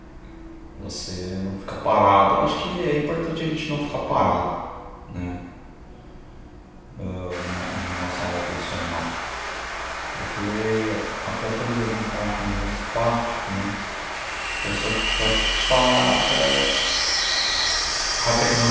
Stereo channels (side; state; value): both; identical; correlation 1.00